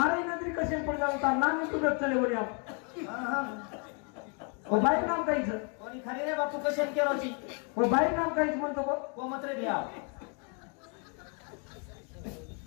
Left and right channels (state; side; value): quieter; right; 37.5 dB